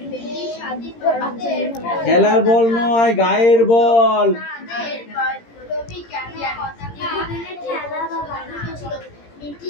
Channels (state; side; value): late; right; 17 ms